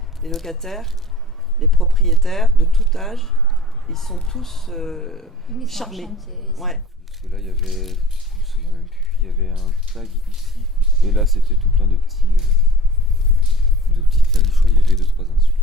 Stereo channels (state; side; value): normal; both; correlation 0.44